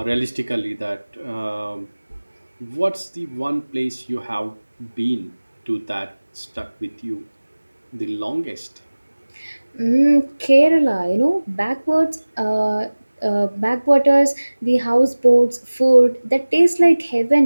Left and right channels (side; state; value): both; inverted; correlation -1.00